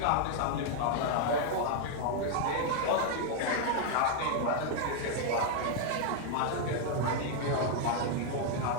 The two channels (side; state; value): both; different; correlation 0.00